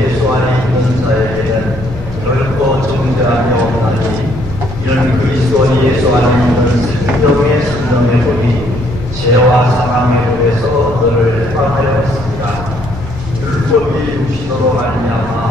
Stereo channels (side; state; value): both; normal; correlation 0.67